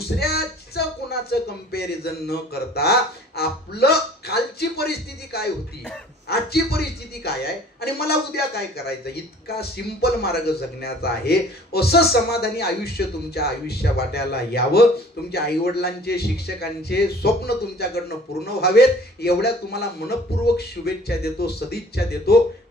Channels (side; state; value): both; normal; correlation 0.50